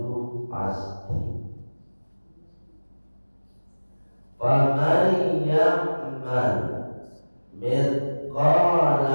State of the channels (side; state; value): both; inverted; correlation -1.00